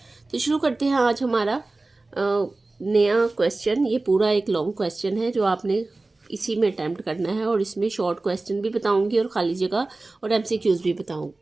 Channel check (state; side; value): quieter; left; 3.2 dB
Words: تو شروع کرتے ہیں آج ہمارا نیا کویسچن. یہ پورا ایک لانگ کویسچن ہے جو آپ نے اسی میں اٹیمپٹ کرنا ہے، اور اس میں شارٹ کویسچن بھی بتاؤں گی اور خالی جگہ اور ایم سی کیوز بھی بتاؤں